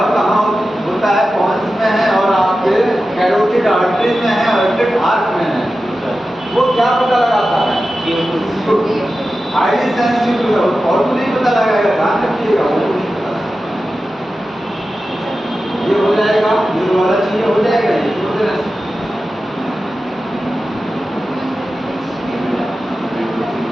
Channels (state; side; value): normal; both; correlation 0.93